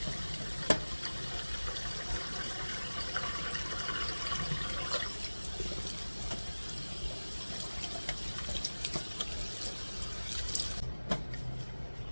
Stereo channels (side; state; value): both; inverted; correlation -1.00